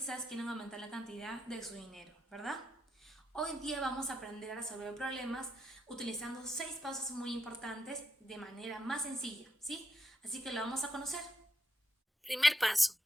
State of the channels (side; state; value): both; normal; correlation 0.82